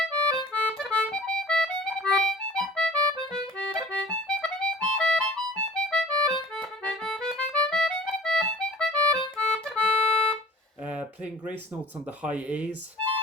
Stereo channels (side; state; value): both; normal; correlation 0.47